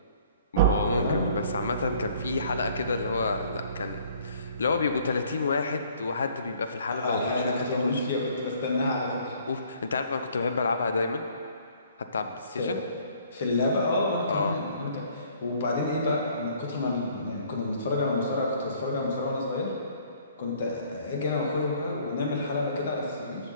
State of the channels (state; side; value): inverted; both; correlation -0.58